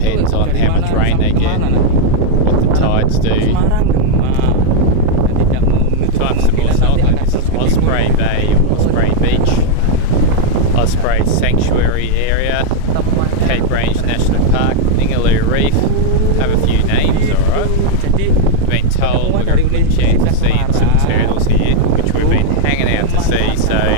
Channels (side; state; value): both; different; correlation 0.00